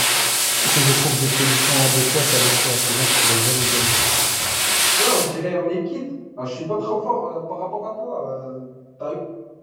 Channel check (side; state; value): both; identical; correlation 1.00